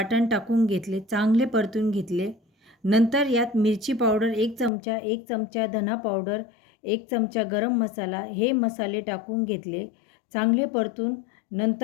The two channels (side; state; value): right; drops out; at 4.7 s